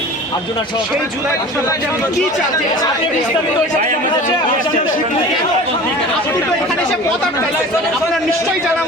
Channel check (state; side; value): normal; both; correlation 0.39